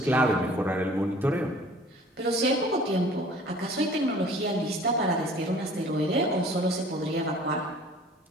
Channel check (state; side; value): normal; both; correlation 0.50